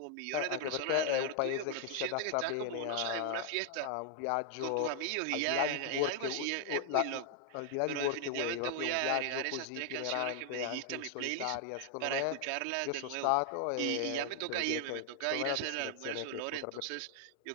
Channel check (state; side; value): different; both; correlation 0.00